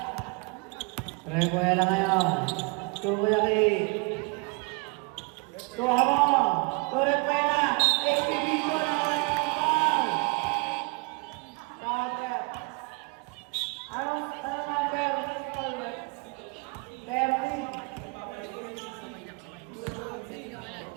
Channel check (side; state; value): left; quieter; 29.9 dB